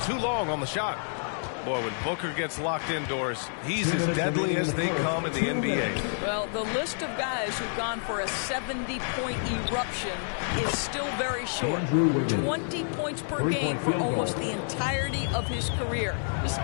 too long on the shot. Boy, when Booker gets locked indoors, he's as deadly as they come in the NBA. Well, the list of guys who've gone for a 70-point eruption is still very short. 20 points per game for almost the entirety of his career. This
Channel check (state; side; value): silent; right; 59 dB below the other